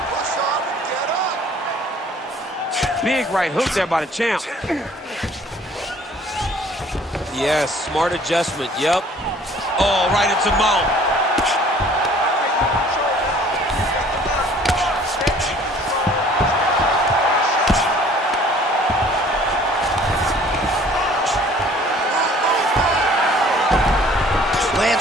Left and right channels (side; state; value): both; normal; correlation 0.54